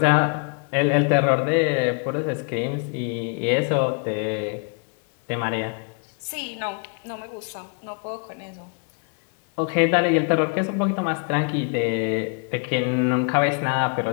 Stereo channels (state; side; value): quieter; right; 39.1 dB